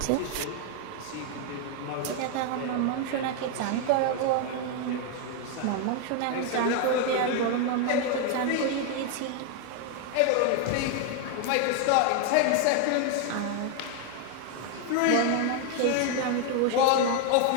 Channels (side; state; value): both; different; correlation 0.00